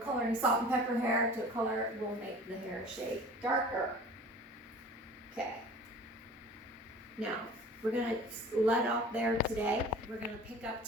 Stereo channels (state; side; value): normal; both; correlation 0.43